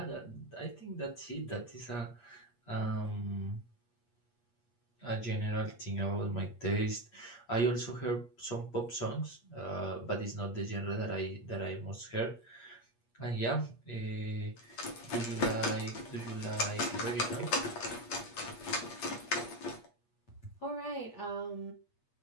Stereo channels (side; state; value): right; late; 8.5 ms